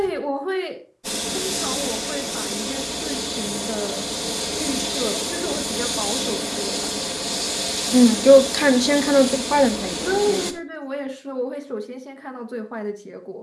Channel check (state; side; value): identical; both; correlation 1.00